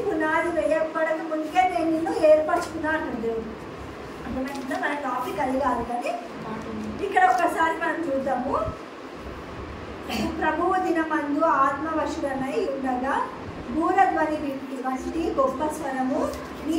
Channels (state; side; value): identical; both; correlation 1.00